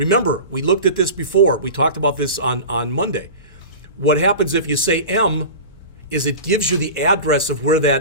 we looked at this before. We talked about this on Monday. What happens if you say M is it gives you the address of where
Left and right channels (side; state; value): both; inverted; correlation -0.32